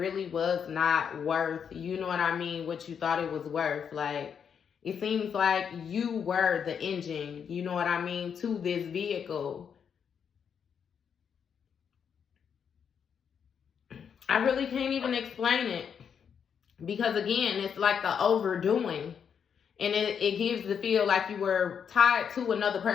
was not worth, you know what I mean, what you thought it was worth. Like it seems like you were the engine, you know what I mean, to this vehicle. I really can't even explain it, because again, it's like the overdoing, and it gives the feel like you were tied to another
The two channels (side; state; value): right; quieter; 7.4 dB